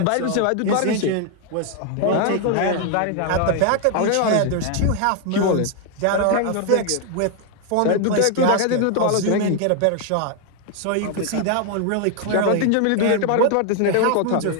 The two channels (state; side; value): different; both; correlation 0.00